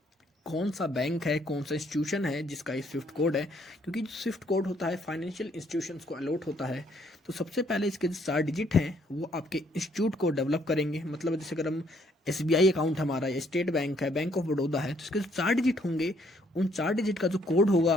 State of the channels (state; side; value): normal; both; correlation 0.67